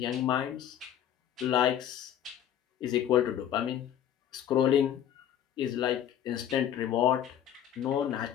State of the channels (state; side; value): quieter; right; 10.2 dB